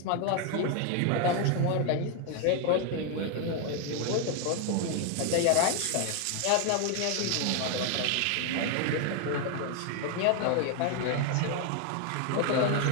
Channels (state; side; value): different; both; correlation 0.01